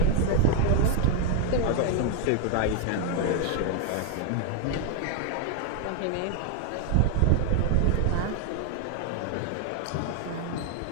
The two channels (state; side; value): different; both; correlation 0.00